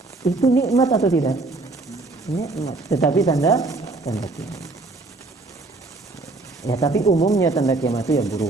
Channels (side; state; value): left; quieter; 3.3 dB